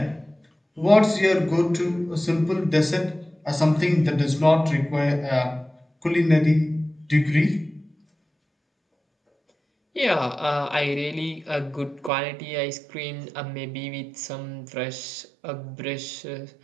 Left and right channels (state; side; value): drops out; left; at 12.1 s